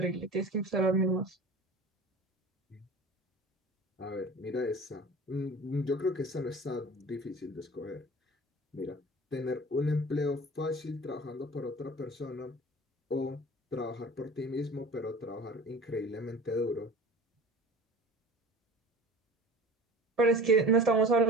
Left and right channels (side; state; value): both; normal; correlation 0.40